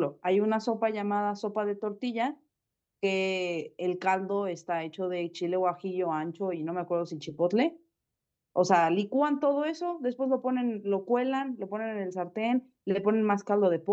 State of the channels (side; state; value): both; identical; correlation 1.00